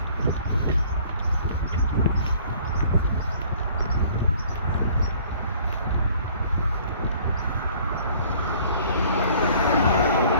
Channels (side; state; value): both; inverted; correlation -0.54